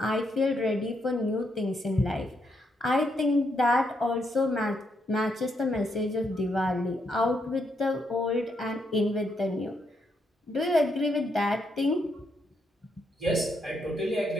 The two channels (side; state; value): both; normal; correlation 0.78